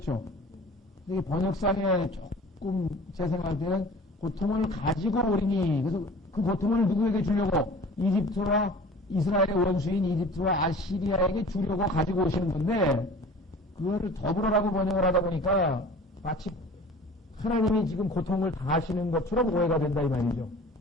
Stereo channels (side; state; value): both; normal; correlation 0.43